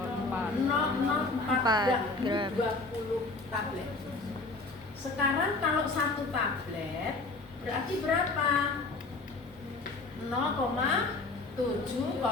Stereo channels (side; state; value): right; quieter; 3.5 dB